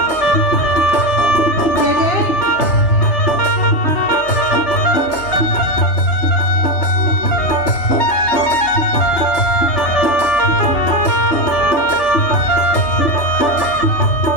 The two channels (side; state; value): right; late; 3.3 ms